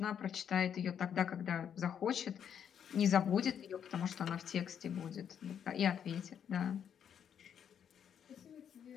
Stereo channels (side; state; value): right; quieter; 8.4 dB